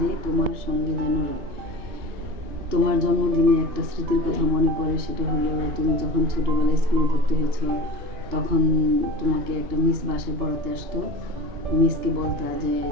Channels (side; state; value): left; late; 2.8 ms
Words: তোমার সঙ্গে যেন রয়। তোমার জন্মদিনে একটা স্মৃতির কথা মনে পড়ে, সেটা হলো তুমি যখন ছোটোবেলায় স্কুলে ভর্তি হয়েছ, তখন তোমাকে একটা মিস বাসায় পড়াতে আসতো। মিসকে বলতা যে